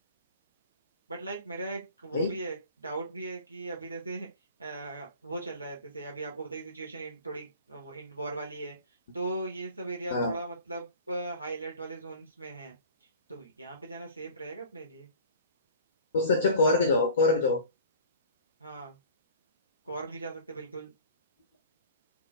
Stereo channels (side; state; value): both; inverted; correlation -0.42